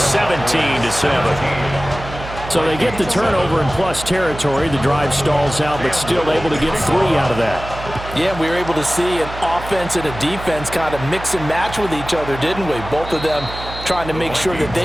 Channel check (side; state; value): right; noise; hum, 11 dB below the sound